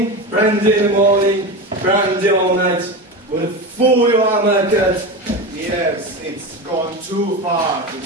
brandy in the morning, brandy all night. What a fool you are, Mercat. Yes, it's gone too far.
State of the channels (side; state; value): both; normal; correlation 0.23